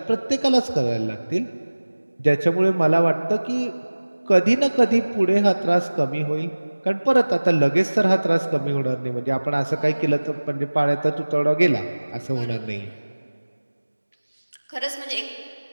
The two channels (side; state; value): both; inverted; correlation -1.00